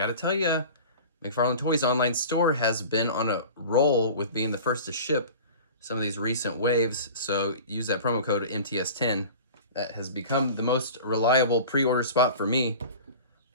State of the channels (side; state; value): both; inverted; correlation -0.37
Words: tell ya, McFarlane Toys online store has been on a roll with being the first to ship some of these recent waves, so use that promo code MTS10. That has become the most reliable pre-order spot for me.